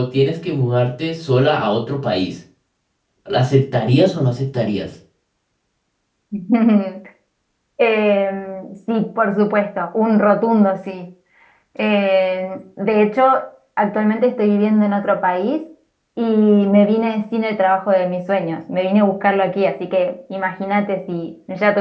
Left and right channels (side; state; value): both; identical; correlation 1.00